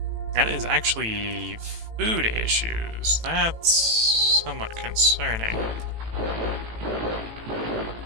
That is actually food issues. That's somewhat concerning.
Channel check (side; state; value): left; late; 18 ms